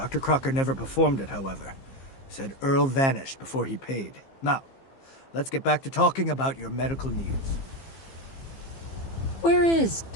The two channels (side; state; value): right; late; 15 ms